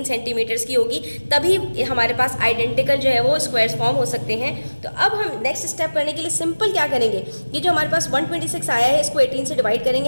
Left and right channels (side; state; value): both; inverted; correlation -1.00